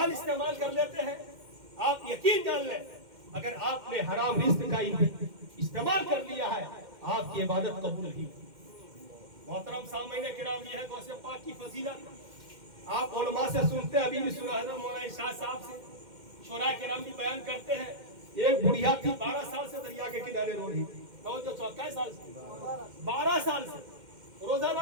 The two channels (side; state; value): left; late; 2.1 ms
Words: इस्तेमाल कर लेते हैं। आप यकीन जान लें, अगर आपने हराम रिस्क का इस्तेमाल कर लिया है, आपकी इबादत कबूल नहीं। मोहतरम सामईन किराम, ये है गौसे पाक की फजीलत। आप उलमा से सुनते हैं, अभी भी सुना है मौलाना इरशाद साहब से, शोरा किराम भी बयान करते हैं। एक बुढ़िया थी 12 साल से दरिया के किनारे रो रही थी, तो 24 साल से 12 साल से